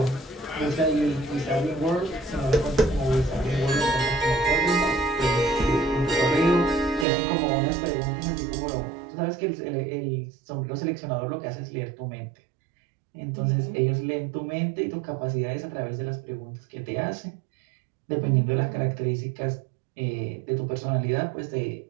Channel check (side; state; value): left; drops out; at 7.1 s